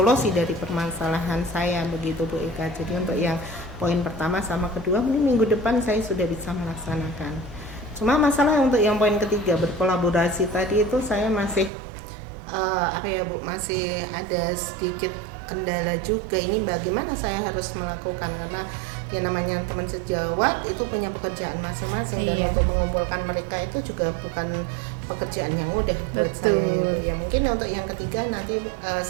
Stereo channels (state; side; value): drops out; left; at 11.7 s